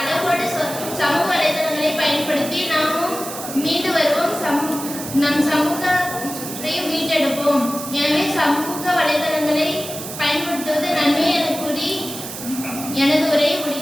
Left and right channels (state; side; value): noise; right; hiss, 9 dB below the sound